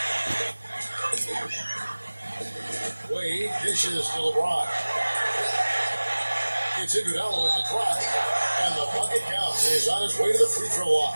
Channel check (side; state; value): both; inverted; correlation -1.00